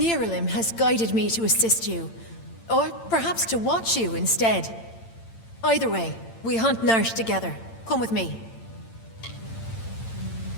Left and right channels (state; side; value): late; right; 8.9 ms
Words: has guided me to assist you. Or perhaps to watch you instead. Either way, we hunt Narsh together. Come with me.